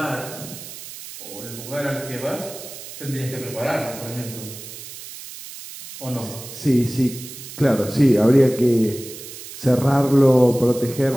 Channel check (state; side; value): noise; right; hiss, 13 dB below the sound